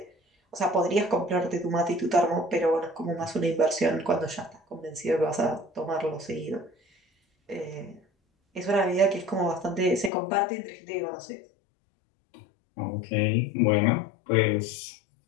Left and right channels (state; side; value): drops out; right; at 10.1 s